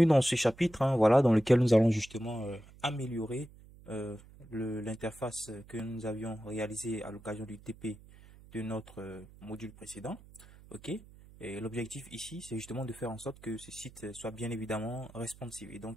dans ce chapitre, voilà, dans lequel nous allons justement améliorer l'interface que nous avions réalisée à l'occasion du TP de notre module précédent. OK? Et l'objectif ici, c'est justement de faire en sorte que ce site soit bien évidemment responsive et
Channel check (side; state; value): right; noise; hum, 21 dB below the sound